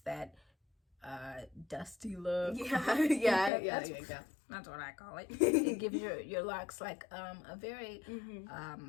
that dusty look. That's what I call it. It gives your locks a very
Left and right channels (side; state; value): right; drops out; at 3.5 s